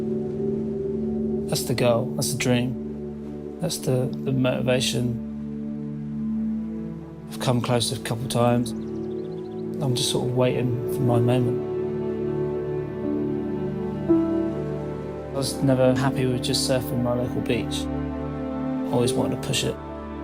That's the goal, that's the dream. That's the motivation. I've come close a couple of times. I'm just sort of waiting for my moment. I was never happy with just surfing my local beach. I always wanted to push it.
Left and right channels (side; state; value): both; identical; correlation 1.00